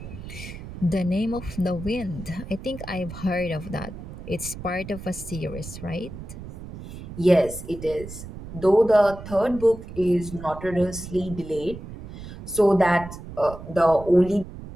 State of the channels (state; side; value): noise; right; rumble, 12 dB below the sound